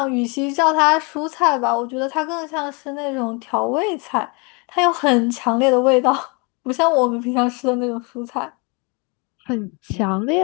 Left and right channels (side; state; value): right; quieter; 31.4 dB